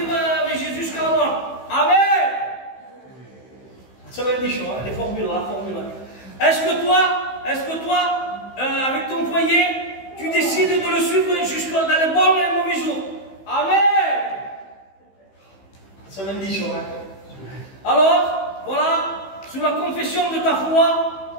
avec Jésus jusqu'à la mort? Amen. Ça va être des choses, hein, les formules là, Est-ce que toi, avec ton foyer, tu décides de le suivre jusqu'à dans les bons et les mauvais jours? Amen. Ça va être des choses, hein. Alors, voilà, sous la confession de ta foi,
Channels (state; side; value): late; right; 15 ms